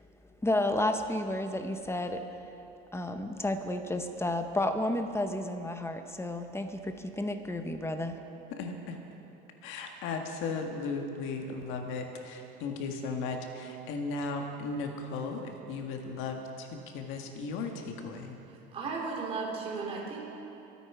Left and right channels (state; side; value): normal; both; correlation 0.56